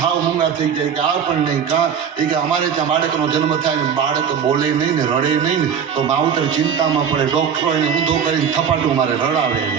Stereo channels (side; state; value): left; quieter; 7.5 dB